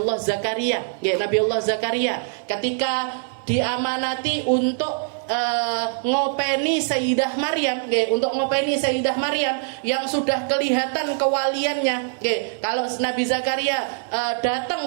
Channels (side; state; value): left; silent; 63 dB below the other